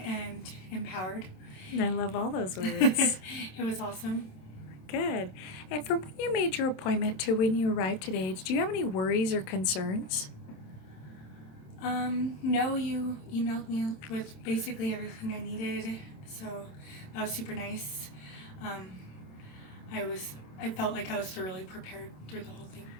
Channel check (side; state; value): right; late; 27 ms